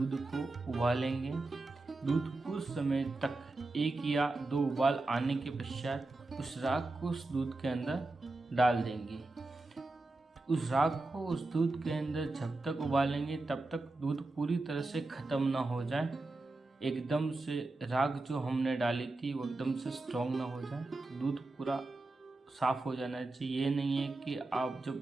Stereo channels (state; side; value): quieter; left; 3.0 dB